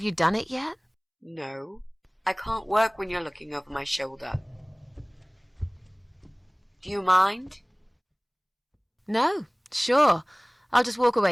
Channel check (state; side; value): identical; both; correlation 1.00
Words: you done it yet? No, I can't work when you're looking over my shoulder. Do you mind? No, sure. I'll just walk